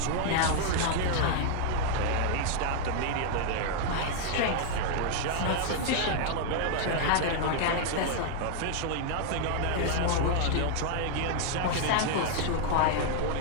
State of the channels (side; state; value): both; different; correlation 0.00